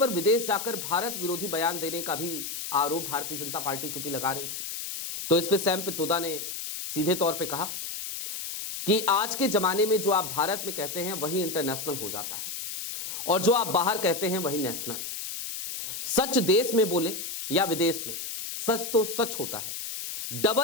विदेश जाकर भारत विरोधी बयान देने का भी आरोप भारतीय जनता पार्टी चूंकि लगा रही थी, तो इस पे सैम पित्रोदा ने सीधे तौर पे कहा कि आज के जमाने में जो आप भारत में कहते हैं वही इंटरनेशनल हो जाता है, और जो आप बाहर कहते हैं वही नेशनल। सच देश में बोले या विदेश में, सच तो सच होता है।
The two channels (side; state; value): left; noise; hiss, 6 dB below the sound